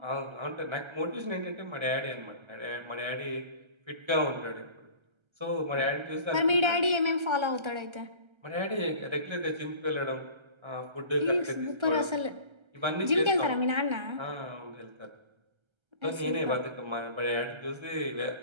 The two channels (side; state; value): left; late; 1.3 ms